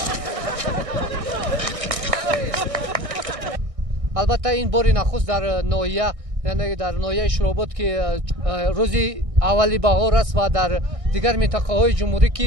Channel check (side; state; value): left; late; 1.6 ms